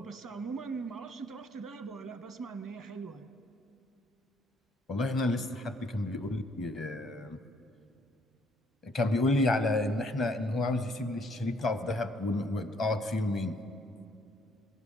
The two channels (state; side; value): normal; both; correlation 0.66